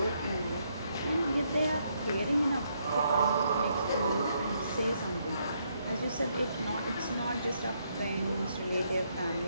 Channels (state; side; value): inverted; both; correlation -0.74